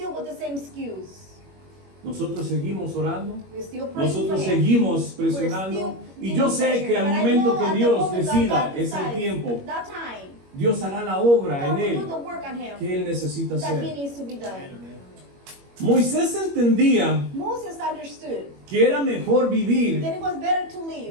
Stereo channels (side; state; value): left; late; 21 ms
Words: with the same excuse. Nosotros seguimos orando, We're still praying for nosotros him. seguimos presionando y yo sé que al momento que Dios decida ese tiempo, that time, Dios hará la obra God en will do Él the work on him que Él necesita that he hacer. needs to be done. Moisés entendía Moses understood que era mejor vivir that it was better to live